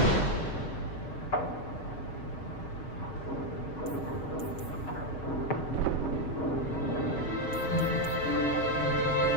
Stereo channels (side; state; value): right; late; 6.1 ms